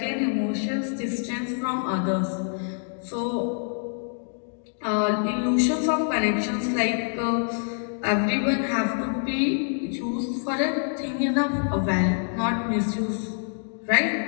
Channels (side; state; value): right; silent; 61 dB below the other